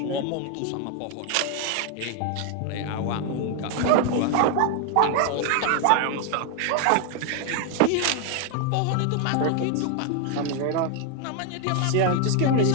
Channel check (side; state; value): both; different; correlation 0.01